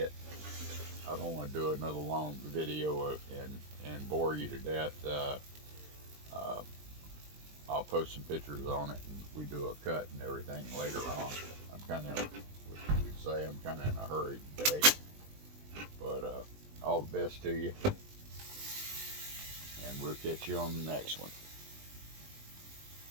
I don't want to do another long video and bore you to death. I'll post some pictures on it, and we do a cut and everything later on. I'm kind of, what you would say, I'm kind of in a hurry today. But all the best to you, and we'll catch you on the next one.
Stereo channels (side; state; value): left; late; 20 ms